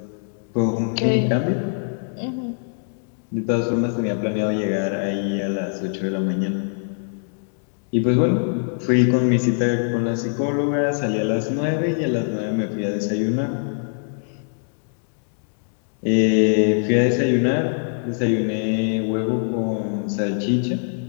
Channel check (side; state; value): right; silent; digital silence